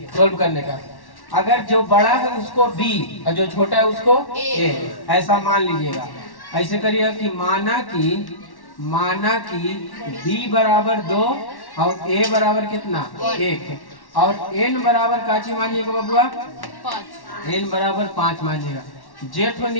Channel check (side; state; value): right; late; 1.1 ms